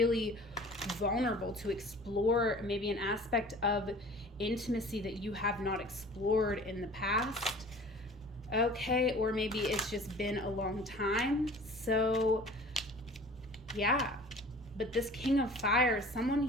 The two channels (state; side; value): noise; right; rumble, 24 dB below the sound